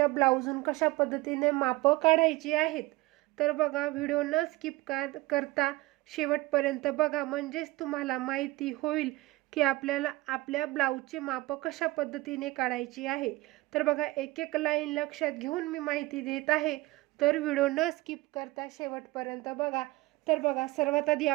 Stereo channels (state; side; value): quieter; left; 20.0 dB